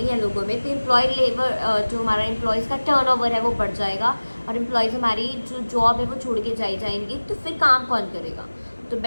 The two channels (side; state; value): both; inverted; correlation -1.00